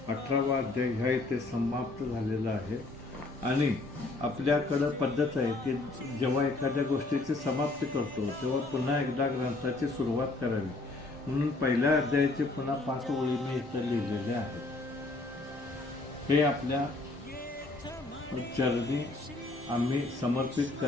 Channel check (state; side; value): quieter; right; 3.2 dB